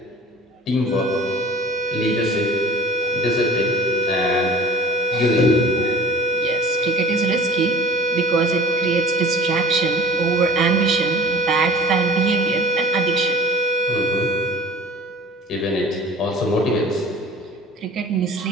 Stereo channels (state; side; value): normal; both; correlation 0.43